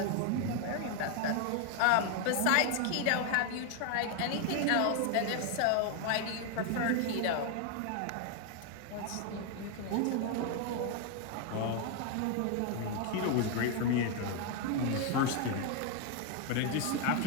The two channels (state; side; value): different; both; correlation 0.00